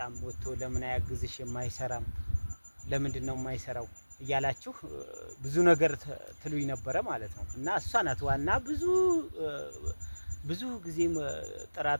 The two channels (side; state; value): both; inverted; correlation -1.00